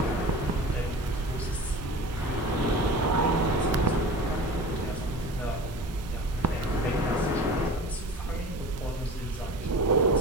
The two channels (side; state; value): both; normal; correlation 0.36